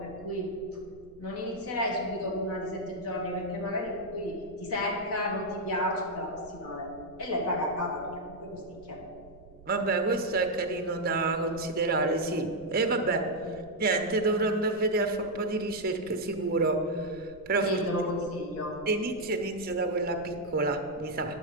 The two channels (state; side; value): noise; right; rumble, 22 dB below the sound